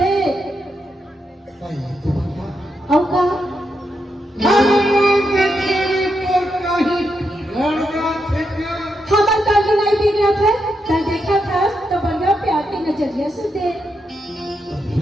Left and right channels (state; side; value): normal; both; correlation 0.83